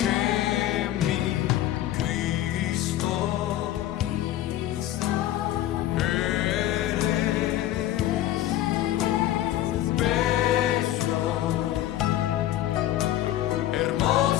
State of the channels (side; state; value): right; quieter; 13.3 dB